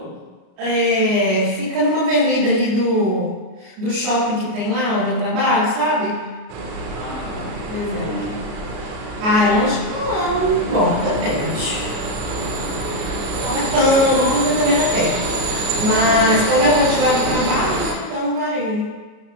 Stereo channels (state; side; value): late; left; 33 ms